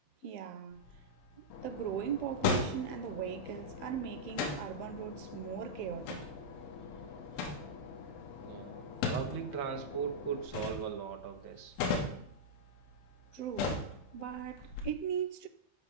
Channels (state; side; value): late; right; 15 ms